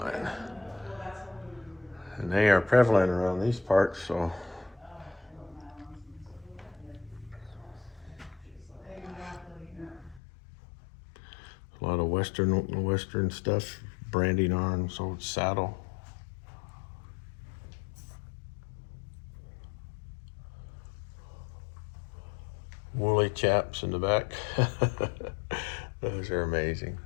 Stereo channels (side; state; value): right; drops out; at 10.2 s